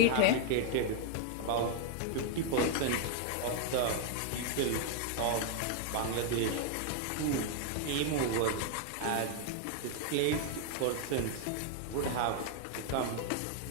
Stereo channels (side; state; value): both; different; correlation 0.00